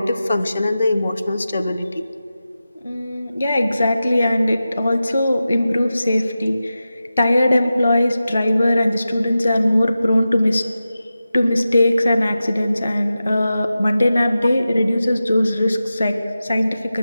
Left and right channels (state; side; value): inverted; both; correlation -0.93